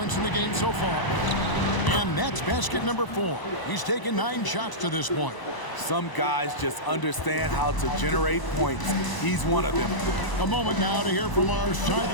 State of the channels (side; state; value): right; late; 1.0 ms